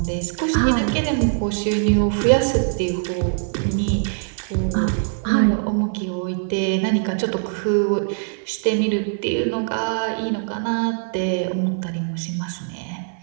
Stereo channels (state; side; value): silent; left; 58 dB below the other